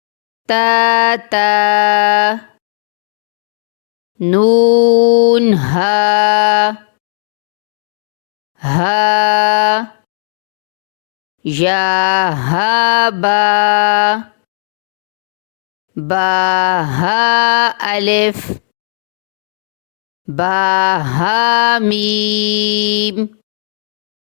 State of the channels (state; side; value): silent; right; digital silence